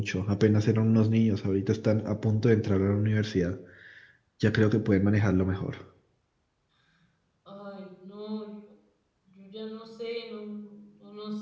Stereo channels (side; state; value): both; identical; correlation 1.00